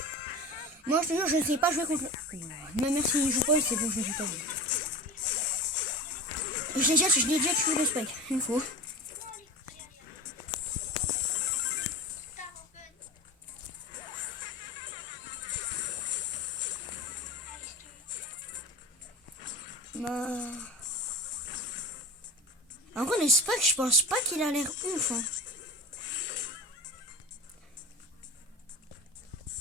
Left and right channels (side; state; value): both; normal; correlation 0.30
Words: Moi, je te jure, je ne sais pas jouer contre le... Même si il joue pas, c'est bon, je ne sais pas. Je l'ai déjà tué le Spike, une fois. Bah... En vrai, le Spike, je pense pas qu'il a l'air ouf. Hein.